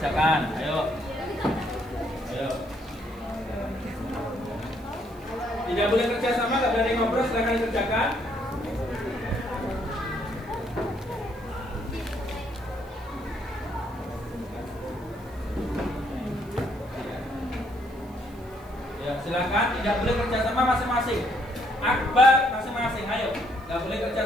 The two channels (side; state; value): right; noise; hiss, 27 dB below the sound